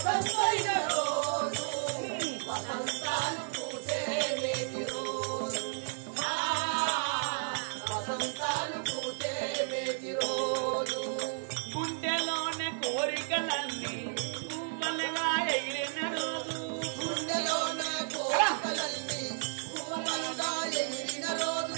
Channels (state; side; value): silent; left; digital silence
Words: రోజు, వసంతాలు పూజే నేటి రోజు, వసంతాలు పూజే నేటి రోజు. గుండెలోనే కోరికలన్నీ పువ్వులుగా ఎగిరిన రోజు, గుండెలోనే కోరికలన్నీ పువ్వులుగా ఎగిరిన